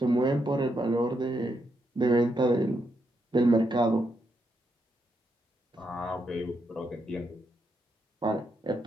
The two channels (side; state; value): both; normal; correlation 0.80